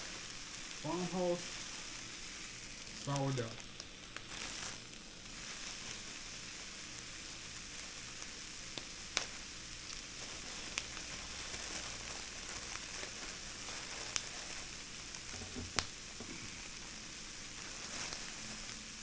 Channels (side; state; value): both; identical; correlation 1.00